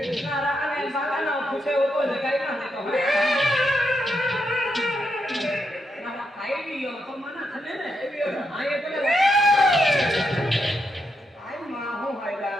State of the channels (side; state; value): both; normal; correlation 0.82